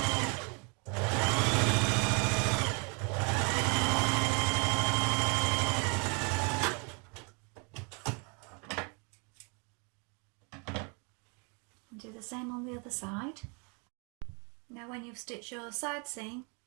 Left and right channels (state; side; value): quieter; left; 34.5 dB